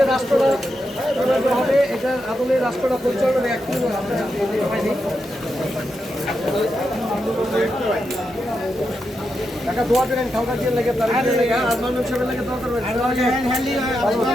রাষ্ট্রটা হবে, এটার আদলে রাষ্ট্রটা পরিচালনা একটু টাকা দোয়া করেন খাওয়া দিয়ে লেগে তার লেগে আর মানুষ হিসেবে লেগে দোয়া করবেন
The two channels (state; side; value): normal; both; correlation 0.86